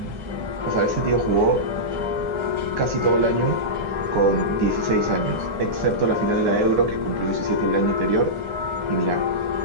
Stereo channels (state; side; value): late; left; 9.8 ms